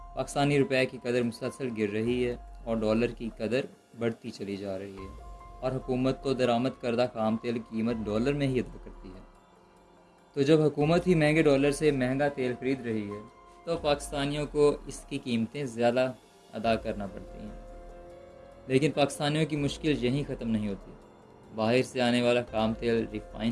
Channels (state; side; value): identical; both; correlation 1.00